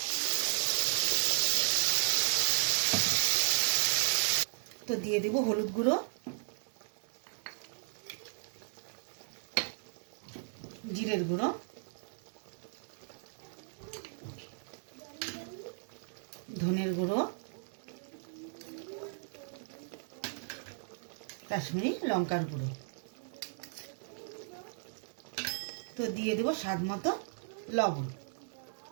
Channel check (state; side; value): silent; left; 54 dB below the other